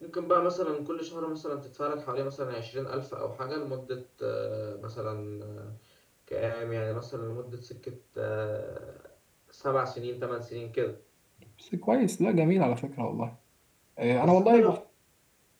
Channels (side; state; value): both; identical; correlation 1.00